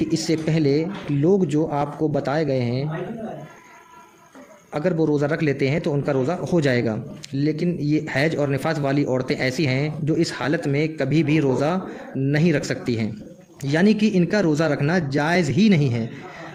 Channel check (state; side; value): identical; both; correlation 1.00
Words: اس سے پہلے لوگ جو آپ کو بتائے گئے ہیں اگر وہ روزہ رکھ لیتے ہیں تو ان کا روزہ ہو جائے گا، لیکن یہ حیض اور نفاس والی عورتیں ایسی ہیں جو اس حالت میں کبھی بھی روزہ نہیں رکھ سکتی ہیں، یعنی کہ ان کا روزہ رکھنا جائز ہی نہیں ہے۔